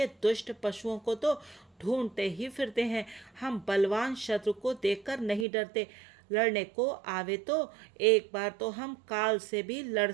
दुष्ट पशुओं को तो ढूंढते ही फिरते हैं। हम बलवान शत्रु को देखकर नहीं डरते, लड़ने को आवे तो एक बार तो हम काल से भी लड़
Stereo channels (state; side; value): drops out; left; at 5.5 s